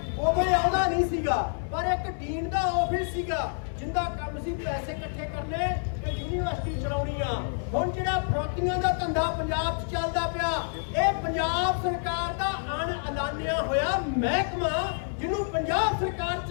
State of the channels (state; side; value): silent; right; digital silence